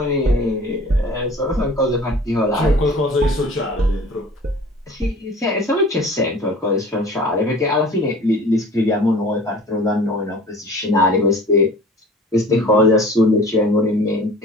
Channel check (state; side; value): normal; both; correlation 0.45